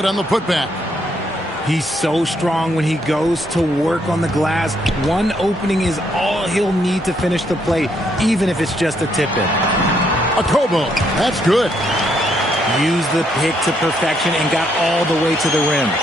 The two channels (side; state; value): both; normal; correlation 0.73